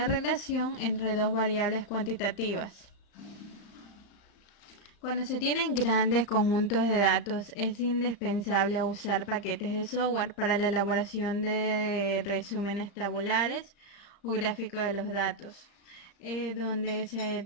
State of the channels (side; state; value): right; late; 35 ms